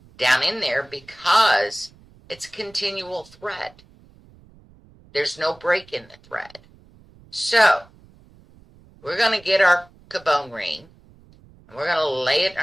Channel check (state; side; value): noise; right; rumble, 27 dB below the sound